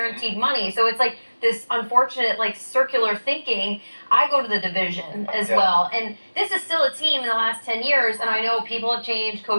money, so it's like this unfortunate like circular thinking. I go to the division as well, and this is still a team in the last 10 years, and I know people have changed,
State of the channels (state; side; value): inverted; both; correlation -1.00